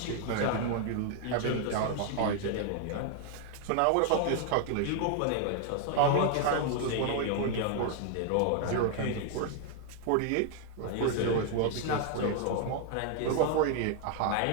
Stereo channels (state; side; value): different; both; correlation 0.00